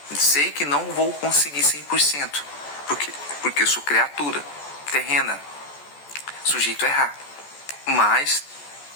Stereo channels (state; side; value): late; right; 14 ms